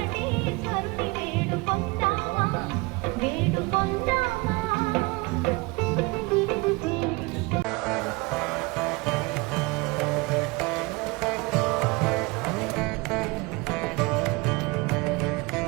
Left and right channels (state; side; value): quieter; left; 25.7 dB